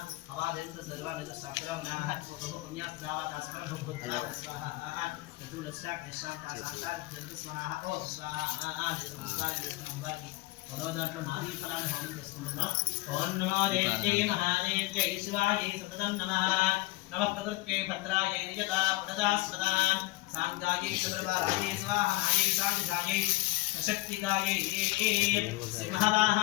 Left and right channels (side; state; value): right; quieter; 20.3 dB